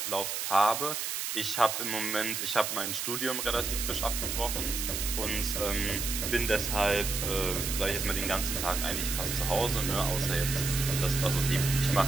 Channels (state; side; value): noise; right; hiss, 2 dB below the sound